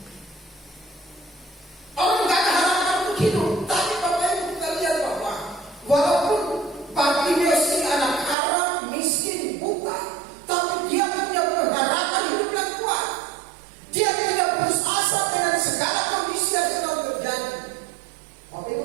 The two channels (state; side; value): drops out; left; at 8.3 s